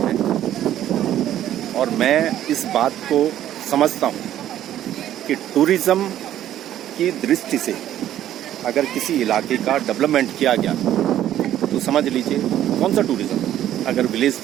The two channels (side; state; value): left; quieter; 12.0 dB